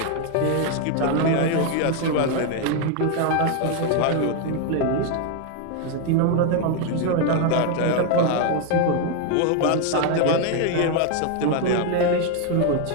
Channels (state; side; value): different; both; correlation 0.01